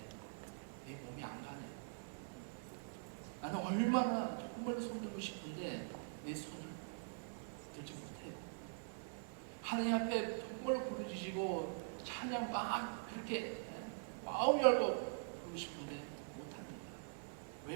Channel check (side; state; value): left; silent; digital silence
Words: 내 몸이 안 가네요. 나는 얼마나 정말 손들고 싶은데 내 손을 들지 못해요. 하나님 앞에 정말 부르짖고 찬양 막 그렇게 마음 열고 부르고 싶은데 못합니다.